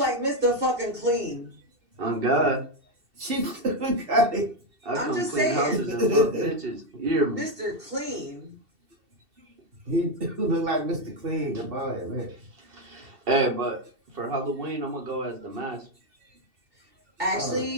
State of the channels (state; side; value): late; left; 2.7 ms